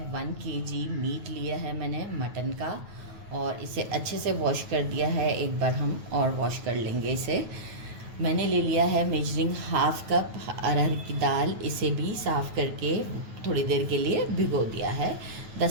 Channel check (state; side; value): late; left; 9.3 ms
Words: 1 kg मीट लिया है मैंने मटन का, और इसे अच्छे से वॉश कर दिया है। एक बार हम और वॉश कर लेंगे इसे। मैंने ले लिया है मेजरिंग हाफ कप अरहर की दाल, इसे भी साफ़ करके थोड़ी देर के लिए भिगो दिया है,